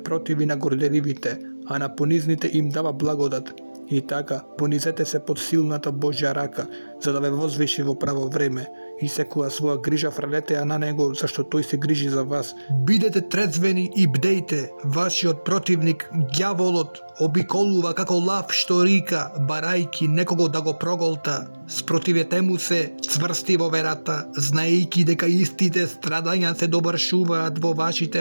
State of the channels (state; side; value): inverted; both; correlation -1.00